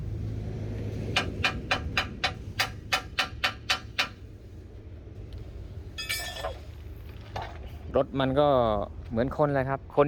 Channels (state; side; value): identical; both; correlation 1.00